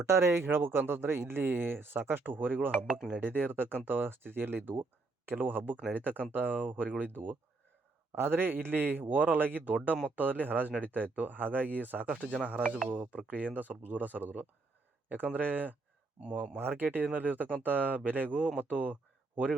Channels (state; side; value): quieter; left; 3.6 dB